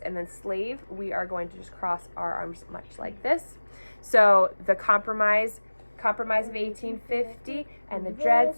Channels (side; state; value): both; inverted; correlation -1.00